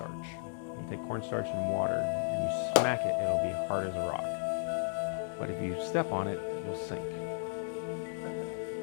You take cornstarch and water and you smack it, it'll be hard as a rock. But if you step on it, you'll sink.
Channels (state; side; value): silent; right; digital silence